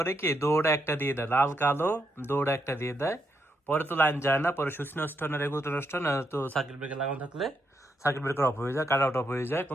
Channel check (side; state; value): both; normal; correlation 0.80